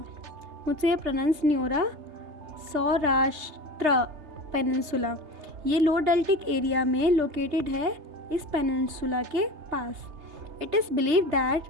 मुझसे ये प्रोनाउंस नहीं हो रहा, सौराष्ट्र पेनिनसुला। ये लो डेल्टिक एरिया में लोकेटेड है, इस पेनिनसुला के पास। It is believed that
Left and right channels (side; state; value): left; late; 3.3 ms